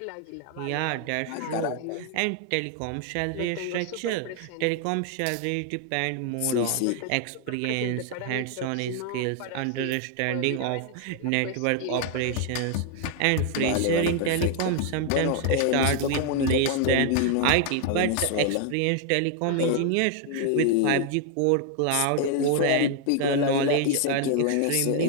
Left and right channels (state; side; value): different; both; correlation 0.00